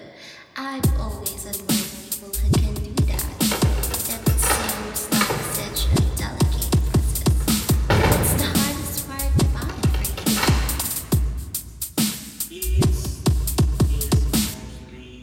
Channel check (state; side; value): identical; both; correlation 1.00